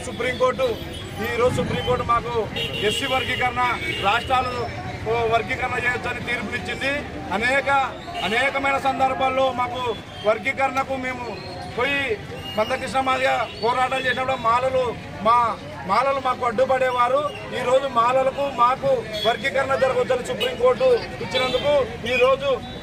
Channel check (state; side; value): identical; both; correlation 1.00